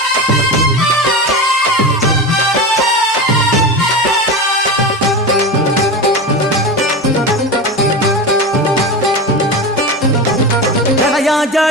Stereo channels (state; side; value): normal; both; correlation 0.24